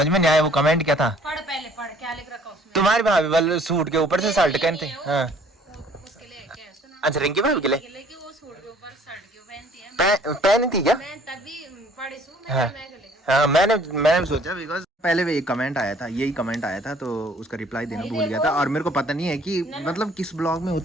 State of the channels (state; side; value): normal; both; correlation 0.57